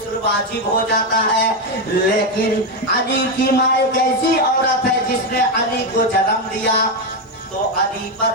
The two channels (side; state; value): both; normal; correlation 0.07